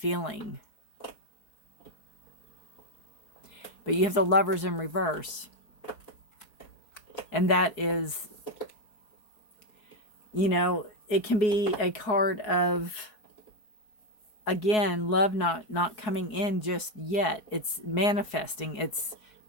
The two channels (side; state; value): right; late; 4.7 ms